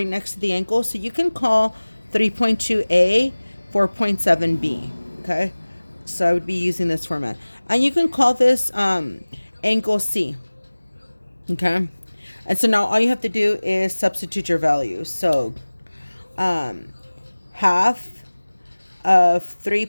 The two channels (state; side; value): inverted; both; correlation -1.00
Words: next to the angle, so you can call 3.2A 4.7B. Okay, so I would be using this format, and you can call this angle C. Okay, and so now all you have to do is substitute your values. So half of